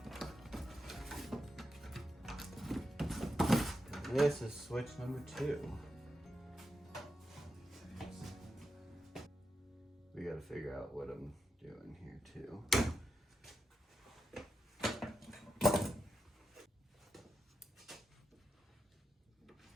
This is switch number 2. We gotta figure out what I'm doing here too.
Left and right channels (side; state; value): both; normal; correlation 0.86